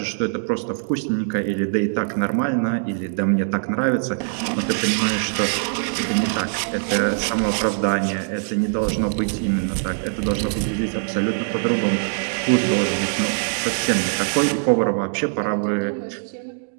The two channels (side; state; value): left; silent; digital silence